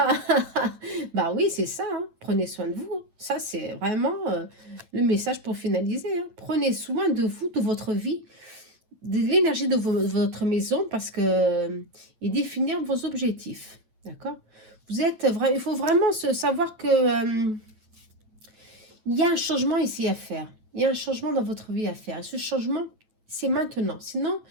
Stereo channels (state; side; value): late; left; 8.9 ms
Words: oui, c'est ça. Hein. Prenez soin de vous. Ça, c'est vraiment le message pour finaliser. Hein. Prenez soin de vous, de votre vie, de l'énergie de votre maison, parce que et définir vos objectifs. D'accord? Il faut vraiment savoir que il y a un changement ici à faire. Il y a un changement dans votre vie à faire. Et ce changement, c'est maintenant. Sinon,